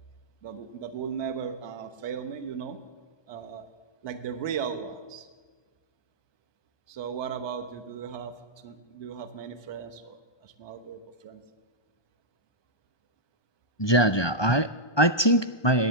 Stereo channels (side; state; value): right; late; 1.2 ms